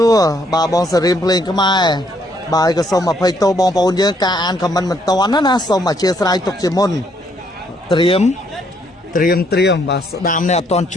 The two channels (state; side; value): normal; both; correlation 0.70